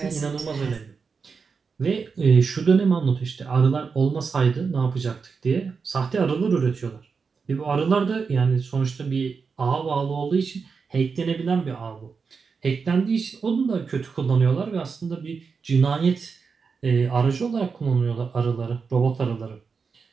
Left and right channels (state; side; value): quieter; left; 5.3 dB